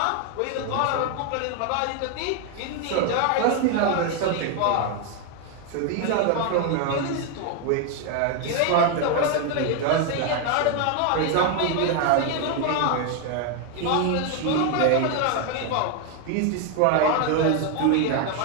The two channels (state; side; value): different; both; correlation 0.01